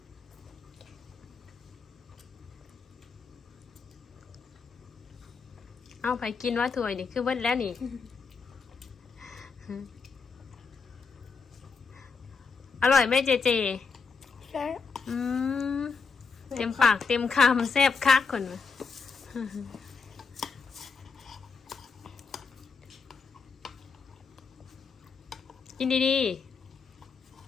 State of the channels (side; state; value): right; quieter; 5.2 dB